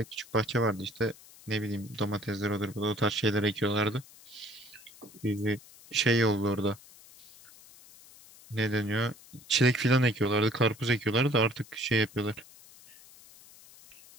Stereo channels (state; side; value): noise; left; hiss, 22 dB below the sound